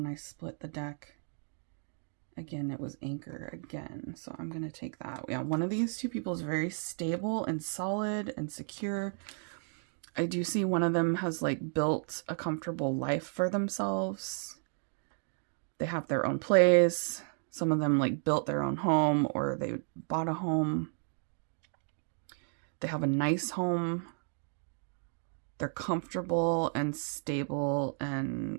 I split the deck, again, it was anchor again. So I'm going to take that. Yeah, one of these two people is very stable and solid and secure. I do see one of them has like built a comfortable life for themselves. They have their own place. Some of them like built their own home or they bought a home. They have a nice home. They're comfortable and stable and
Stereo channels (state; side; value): silent; left; 56 dB below the other